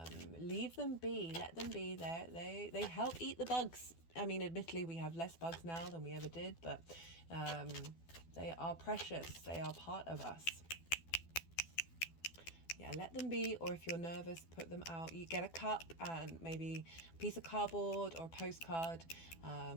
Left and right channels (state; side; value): late; right; 12 ms